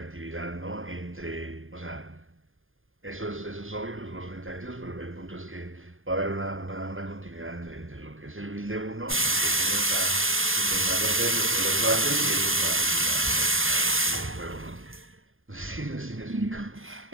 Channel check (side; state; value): left; late; 0.59 ms